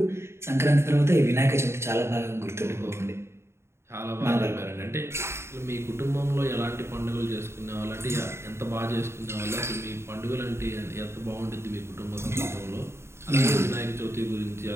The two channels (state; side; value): late; left; 0.13 ms